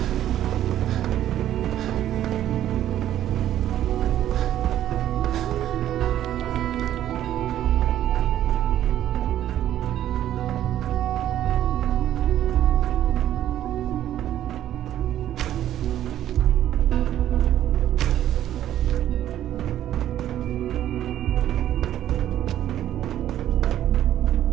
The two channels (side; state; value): left; quieter; 11.9 dB